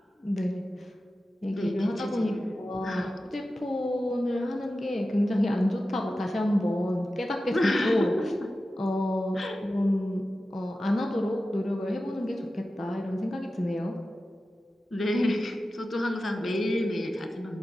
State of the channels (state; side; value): normal; both; correlation 0.94